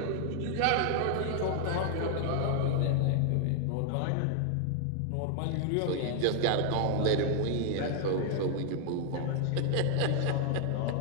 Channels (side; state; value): both; different; correlation 0.00